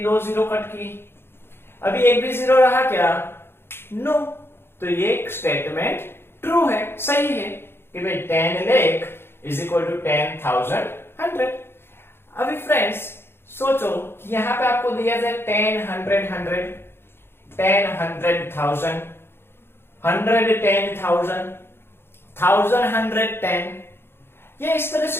2 जीरो कट की। अभी एक भी जीरो रहा क्या? नो। तो ये स्टेटमेंट ट्रू है, सही है कि भाई 10 लाख इज इक्वल टू 10,000 100। अभी फ्रेंड्स सोचो कि यहां पे आपको दिया जाए 10 100 100, 10 100,000, 100 10,000, 1000 110। ये इस तरह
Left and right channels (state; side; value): late; right; 0.11 ms